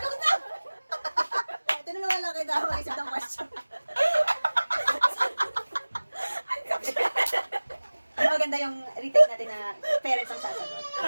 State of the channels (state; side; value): inverted; both; correlation -1.00